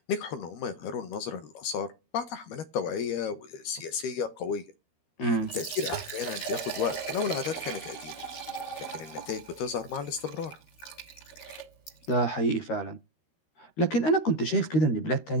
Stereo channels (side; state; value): right; late; 13 ms